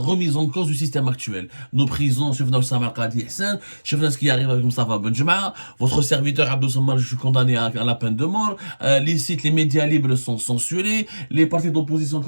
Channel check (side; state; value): both; inverted; correlation -1.00